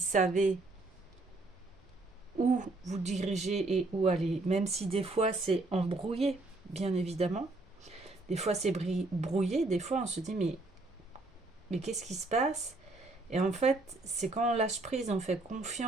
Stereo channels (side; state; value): left; quieter; 3.0 dB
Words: où vous dirigez et où aller. Même si des fois c'est embrouillé, bien évidemment. Des fois c'est brouillé, des fois on se dit mais qu'est-ce qui se passe? Et en fait, c'est quand on lâche prise, on fait